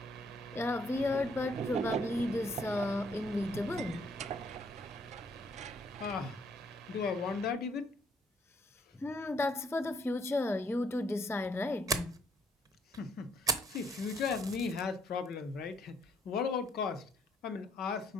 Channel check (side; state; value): both; normal; correlation 0.67